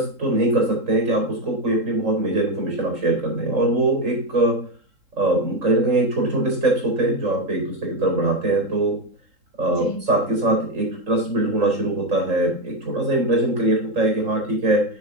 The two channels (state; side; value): late; left; 3.7 ms